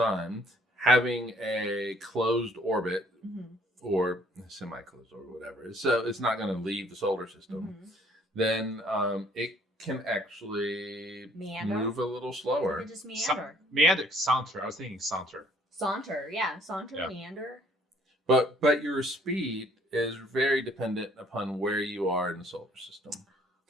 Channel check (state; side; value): normal; both; correlation 0.61